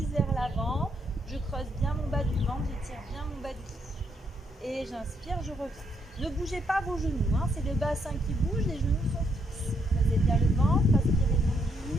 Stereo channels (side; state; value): both; normal; correlation 0.75